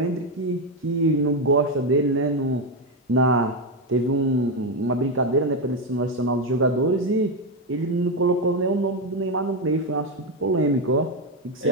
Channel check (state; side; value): normal; both; correlation 0.08